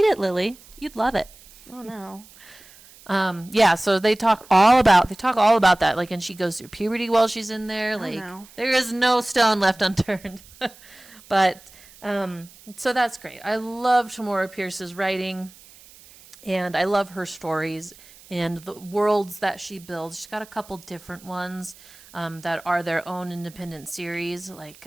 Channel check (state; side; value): noise; right; hiss, 23 dB below the sound